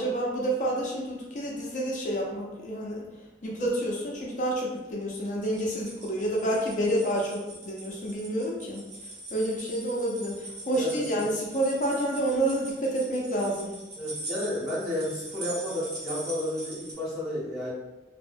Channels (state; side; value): normal; both; correlation 0.42